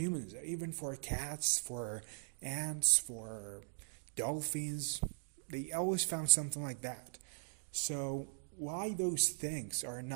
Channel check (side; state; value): left; silent; digital silence